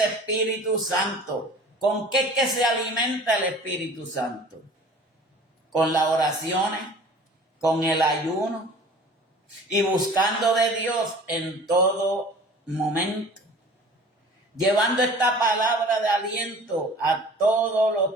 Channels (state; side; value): normal; both; correlation 0.45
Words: Espíritu Santo. ¿Con qué es que se alimenta el Espíritu Santo? Con las oraciones, con el ayuno y buscando de Dios en todo momento. Llevando esta palabra de aliento a todos